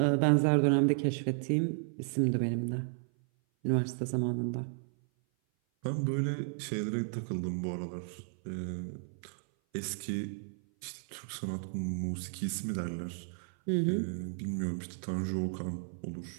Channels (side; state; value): left; silent; 55 dB below the other